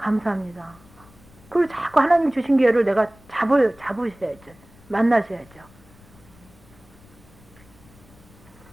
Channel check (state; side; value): noise; left; rumble, 25 dB below the sound